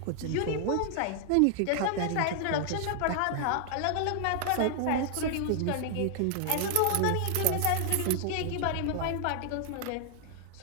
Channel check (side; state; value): both; different; correlation 0.00